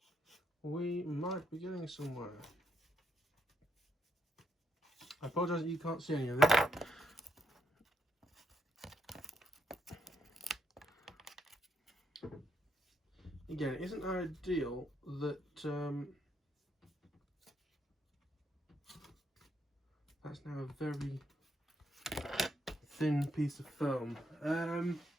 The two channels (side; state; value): both; normal; correlation 0.77